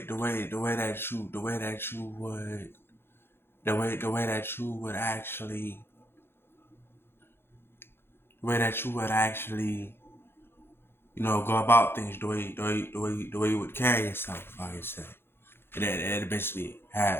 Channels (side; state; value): right; late; 0.11 ms